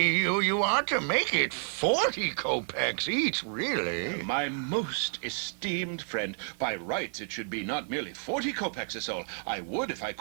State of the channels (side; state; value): left; silent; 58 dB below the other